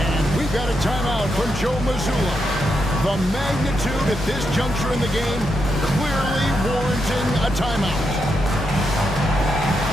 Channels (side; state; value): both; normal; correlation 0.83